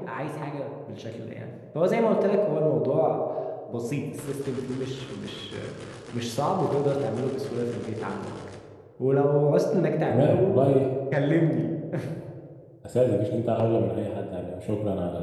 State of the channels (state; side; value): identical; both; correlation 1.00